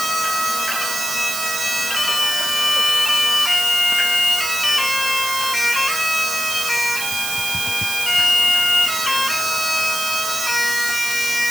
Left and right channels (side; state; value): right; noise; hiss, 4 dB below the sound